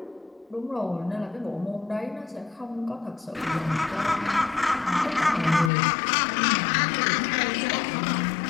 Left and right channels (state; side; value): drops out; right; at 5.7 s